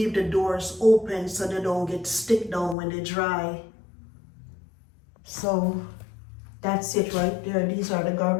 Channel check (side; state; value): right; drops out; at 2.8 s